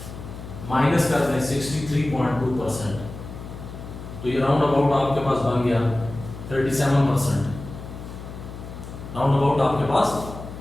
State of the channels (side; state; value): left; noise; hum, 12 dB below the sound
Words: माइनस कर दें 63.2%, तो ये राउंड अबाउट आपके पास बन गया 37%। राउंड अबाउट आपके पास